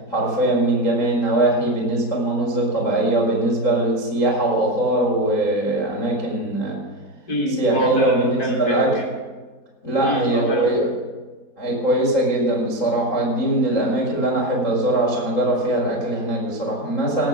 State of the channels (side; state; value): right; late; 3.9 ms